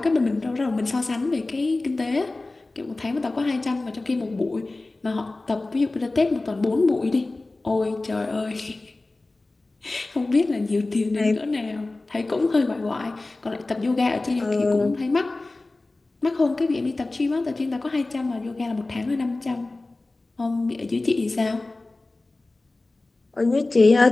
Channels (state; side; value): quieter; right; 3.1 dB